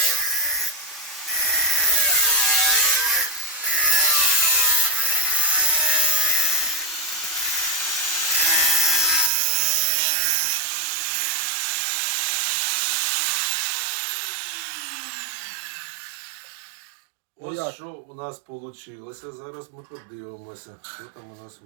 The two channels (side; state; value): left; drops out; at 9.3 s